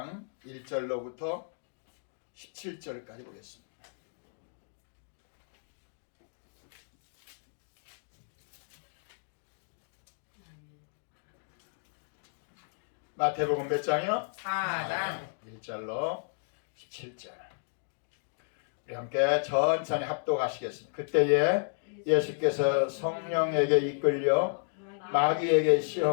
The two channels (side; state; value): right; silent; digital silence